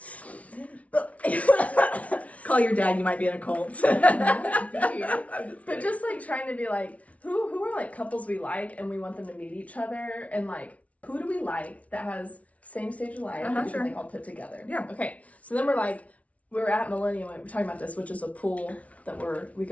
Call your dad, you might be in a cult. But just like trying to be like, who are like couples we like and we want them to meet each other, and like, who do we like that has same stage of life that we can like all put together? Yeah. Okay. So then we're at Millennium, we're talking about this, which is a pool that we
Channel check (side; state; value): right; late; 0.066 ms